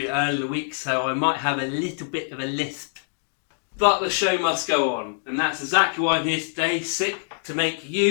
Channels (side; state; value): right; silent; digital silence